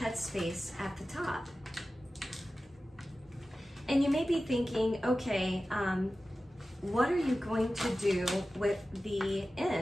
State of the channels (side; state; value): both; normal; correlation 0.95